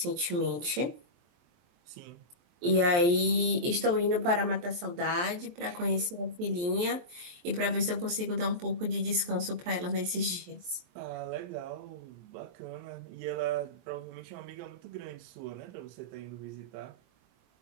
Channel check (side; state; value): left; late; 23 ms